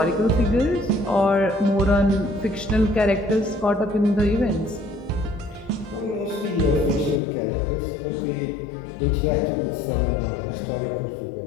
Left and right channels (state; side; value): drops out; right; at 7.2 s